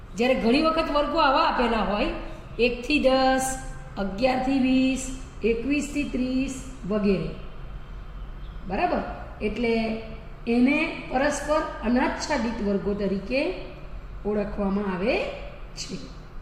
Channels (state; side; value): identical; both; correlation 1.00